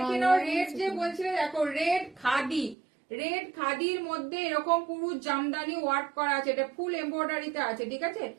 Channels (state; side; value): drops out; left; at 2.8 s